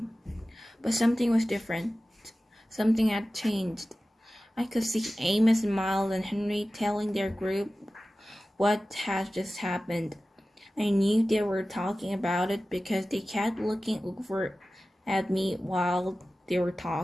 But something was different. Something had changed. I could see Amos and Miles and Henry telling their group what had just happened. I knew they were talking about it because they kept looking over at me while they were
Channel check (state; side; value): normal; both; correlation 0.96